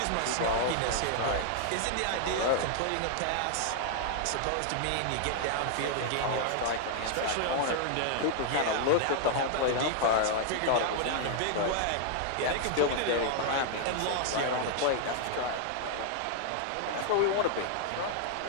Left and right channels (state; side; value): different; both; correlation 0.00